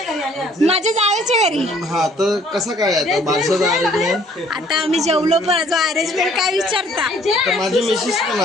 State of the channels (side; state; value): both; normal; correlation 0.59